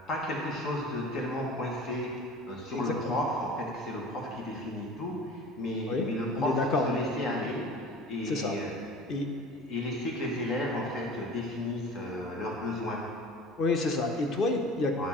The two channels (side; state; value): both; normal; correlation 0.41